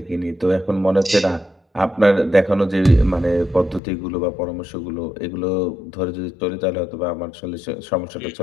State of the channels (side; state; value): right; drops out; at 3.8 s